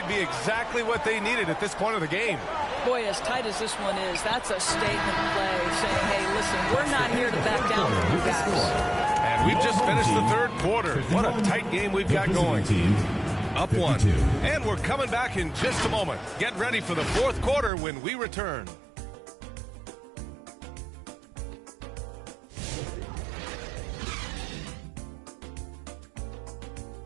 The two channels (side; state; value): left; drops out; at 17.7 s